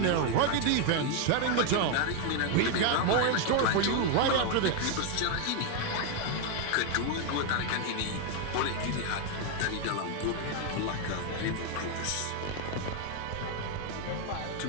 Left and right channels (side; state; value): both; different; correlation 0.01